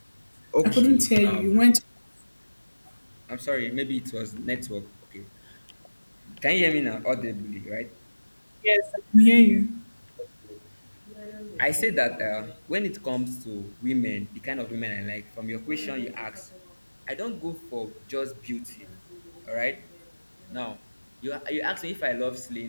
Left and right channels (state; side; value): inverted; both; correlation -1.00